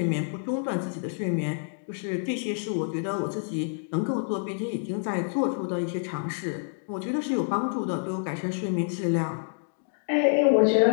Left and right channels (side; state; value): right; silent; digital silence